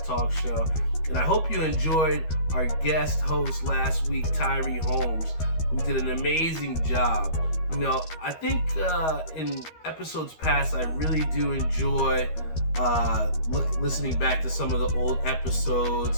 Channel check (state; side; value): late; right; 13 ms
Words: Talk Show, and I hope you enjoyed our guest host last week, Tyree Holmes, who did an amazing job. I think in episodes past, I really do enjoy listening back to some of the old